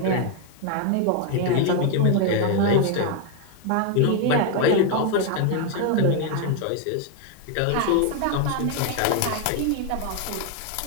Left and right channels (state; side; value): different; both; correlation 0.01